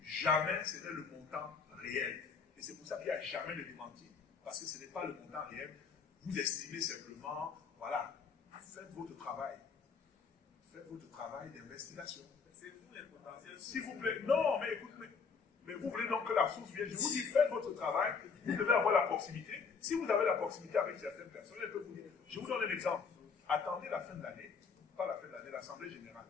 jamais ce n'est le montant réel. Et c'est pour ça qu'il n'y a jamais de démenti, parce que ce n'est pas le montant réel. Vous estimez simplement, voilà, faites votre travail. Faites votre travail d'investigation. C'est vous les potentiels. S'il vous plaît, non, mais écoutez, mais vous voulez donc que la source vienne. Je vous dis, faites votre travail, vous devez avoir la proximité. Si vous avez la proximité avec certaines personnes, elles peuvent vous dire. Je vous donne un exemple. Attendez la fin de l'année, pas la fin de l'année, l'Assemblée générale.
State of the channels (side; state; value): right; quieter; 5.5 dB